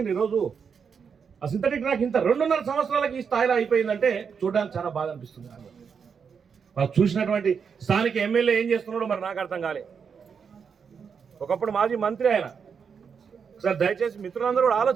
ఈరోజు ఆ సింథటిక్ ట్రాక్ ఇంత 2.5 సంవత్సరాలకి ఈ స్థాయిలో అయిపోయిందంటే చూడడానికి చాలా బాధ అనిపిస్తుంది. వాళ్ళు చూసినటువంటి స్థానిక ఎమ్మెల్యే ఏం చేస్తున్నాడో మరి నాకు అర్థం కాలే. ఒకప్పుడు మాజీ మంత్రి ఆయన. ఒకసారి దయచేసి మిత్రులందరూ కూడా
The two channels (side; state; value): left; quieter; 6.4 dB